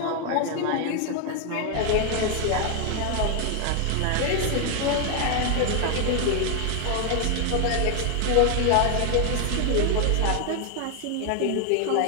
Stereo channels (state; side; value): different; both; correlation 0.00